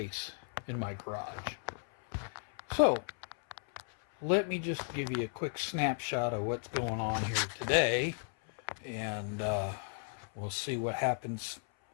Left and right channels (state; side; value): silent; right; 55 dB below the other